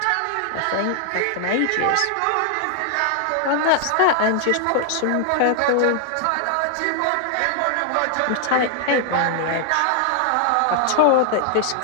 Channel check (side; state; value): both; different; correlation 0.00